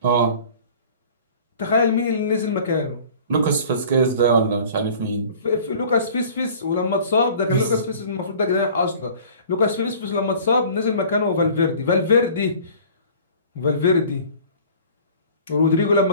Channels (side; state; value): both; inverted; correlation -0.47